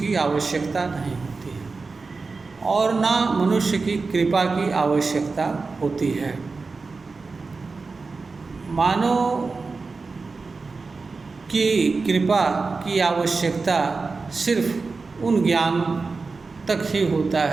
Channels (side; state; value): left; quieter; 4.2 dB